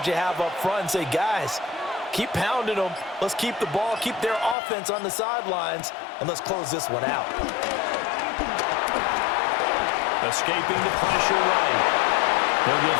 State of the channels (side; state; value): right; drops out; at 4.5 s